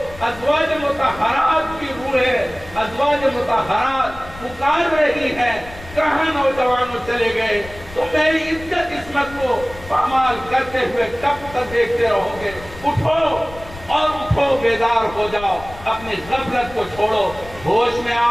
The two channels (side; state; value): left; noise; rumble, 17 dB below the sound